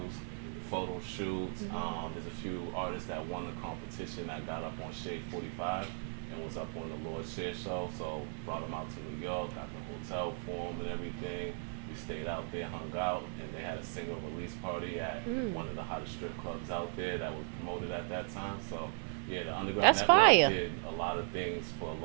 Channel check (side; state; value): left; silent; 53 dB below the other